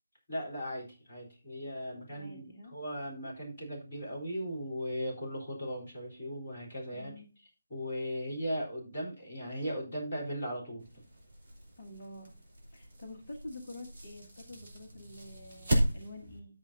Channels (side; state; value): both; inverted; correlation -0.88